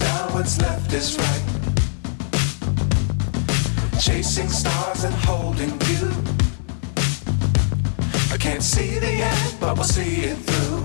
what's left is right. Chasing stars and holding you. I can't see the end, but we'll see it through.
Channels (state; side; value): silent; right; digital silence